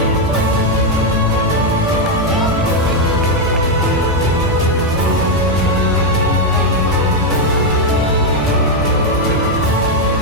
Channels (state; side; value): normal; both; correlation 0.03